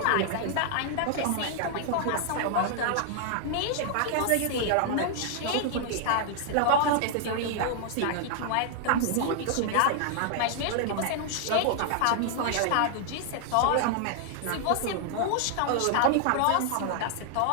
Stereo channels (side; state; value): both; different; correlation 0.00